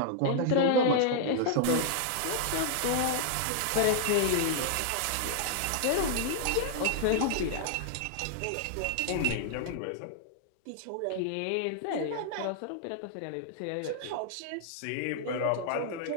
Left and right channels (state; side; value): different; both; correlation -0.01